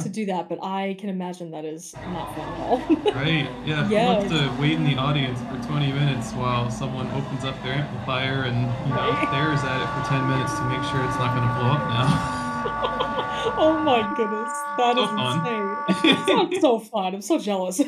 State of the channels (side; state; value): both; identical; correlation 1.00